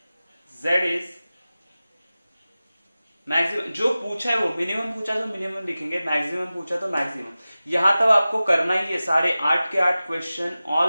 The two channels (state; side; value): inverted; both; correlation -0.96